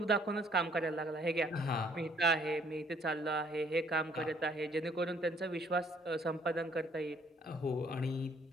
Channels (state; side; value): normal; both; correlation 0.63